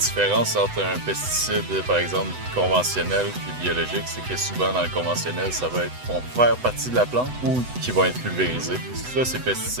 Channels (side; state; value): left; late; 8.0 ms